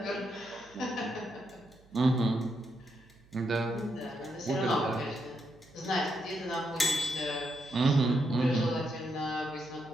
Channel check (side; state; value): right; noise; hum, 27 dB below the sound